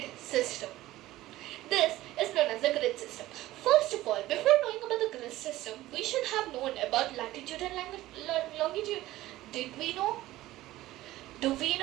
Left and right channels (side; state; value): left; quieter; 16.2 dB